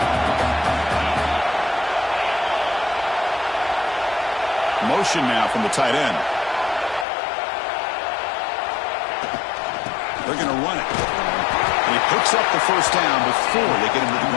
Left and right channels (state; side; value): drops out; right; at 7.1 s